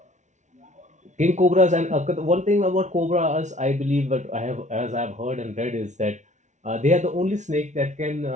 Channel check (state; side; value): late; left; 0.35 ms